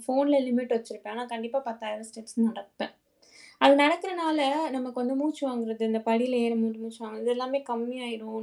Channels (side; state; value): both; identical; correlation 1.00